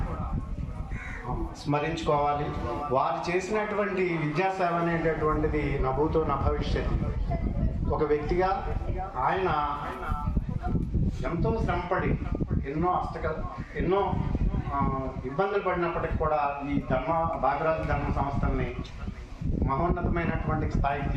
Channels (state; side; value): identical; both; correlation 1.00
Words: స్మరించుకోవాలి. వారు చేసినటువంటి విద్యాసేవ అనేటటువంటిది నా భూతో నా భవిష్యత్. ఒక వ్యక్తిగా ఆయన ఎంతో శ్రమపడి ఎన్నో ఇబ్బందులు పడినప్పటికీ కూడా ఈ భాగరాజు ధర్మ సంస్థల్ని మహోన్నతమైనటువంటి స్థాయికి